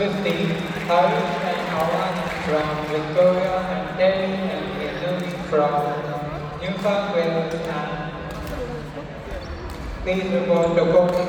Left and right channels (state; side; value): identical; both; correlation 1.00